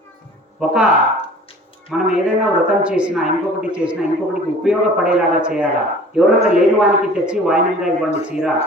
మనం ఏదైనా వ్రతం చేసినా ఇంకొకటికి ఉపయోగపడేలాగా చేయాలా. ఎవరైనా లేని వానికి తెచ్చి వాయనంగా ఇవ్వండి చీర,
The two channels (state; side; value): normal; both; correlation 0.46